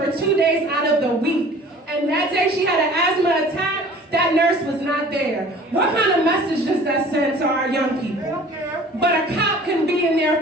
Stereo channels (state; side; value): normal; both; correlation 0.47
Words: 2 days out of the week. And that day she had an asthma attack. That nurse was not there. What kind of message does that send to our young people? But a cop can be in there